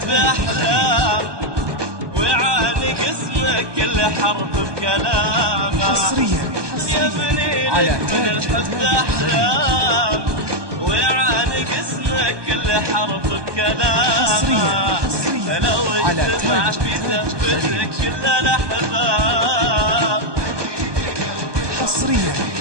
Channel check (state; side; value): late; left; 1.2 ms